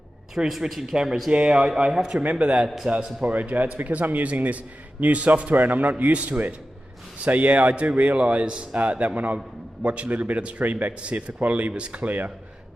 Through switching cameras, yeah, I have to remember that, Sapporo J. It's because I'm using this new software and I'm not used to it. So yeah, I do realise that when I watch a little bit of the stream back to see if the quality was clear.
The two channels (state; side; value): normal; both; correlation 0.93